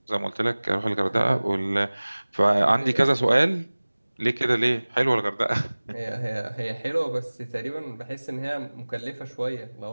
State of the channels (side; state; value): both; inverted; correlation -1.00